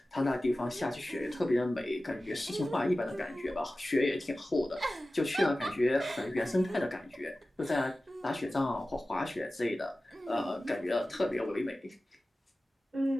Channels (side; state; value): both; normal; correlation 0.96